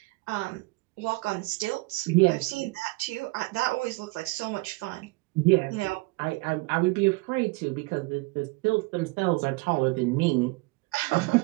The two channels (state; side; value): quieter; left; 24.6 dB